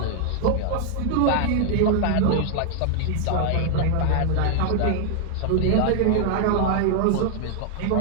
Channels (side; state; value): both; different; correlation 0.00